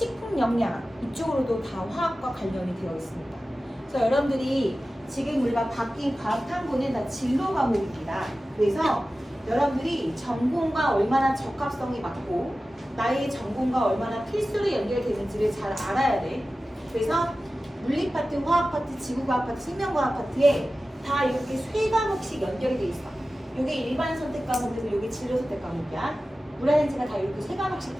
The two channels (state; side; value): normal; both; correlation 0.95